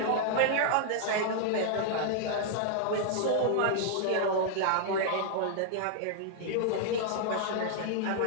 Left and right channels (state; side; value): different; both; correlation -0.01